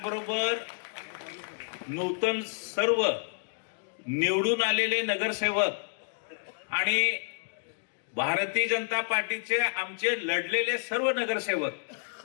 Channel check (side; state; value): right; silent; digital silence